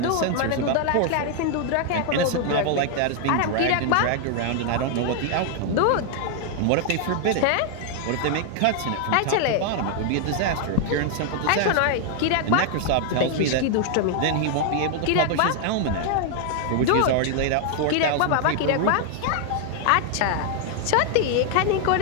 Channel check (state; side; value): different; both; correlation 0.00